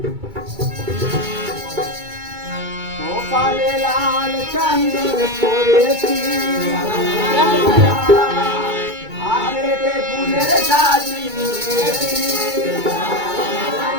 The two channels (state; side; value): late; left; 2.3 ms